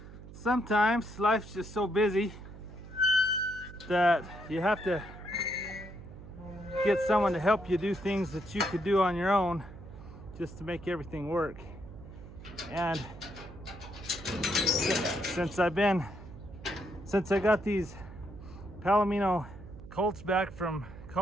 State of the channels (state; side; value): noise; right; hum, 15 dB below the sound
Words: Sometimes life's just so busy that you have to get someone to help you do things that you could do on your own just to make everything work. And since I got these Palomino colts back from